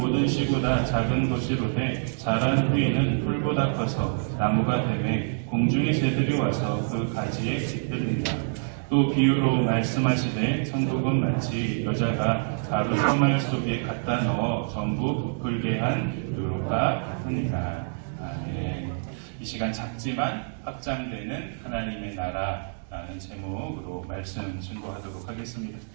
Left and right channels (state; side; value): silent; left; digital silence